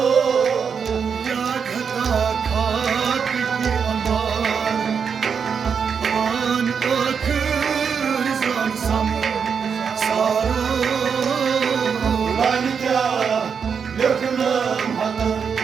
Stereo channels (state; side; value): quieter; left; 6.5 dB